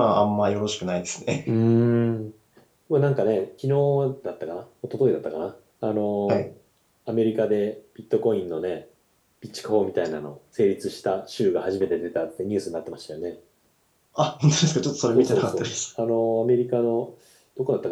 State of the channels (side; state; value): both; identical; correlation 1.00